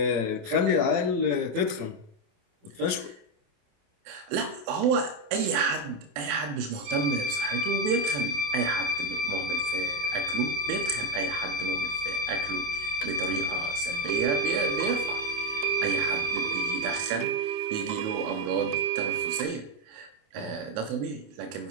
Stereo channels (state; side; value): late; left; 28 ms